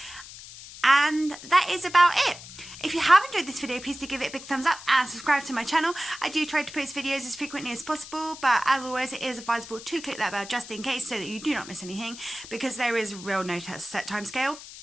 And that is about it. If you have enjoyed this video, please do give it a big thumbs up and subscribe to my channel. I do try to post videos as frequently as possible, but as always, it is advisable to click that bell just in case so that you do not miss anything, because there is real no set time scale.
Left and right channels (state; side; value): noise; left; hiss, 15 dB below the sound